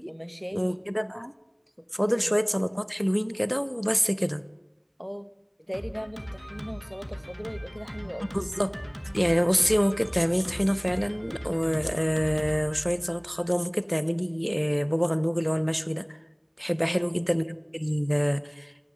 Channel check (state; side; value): identical; both; correlation 1.00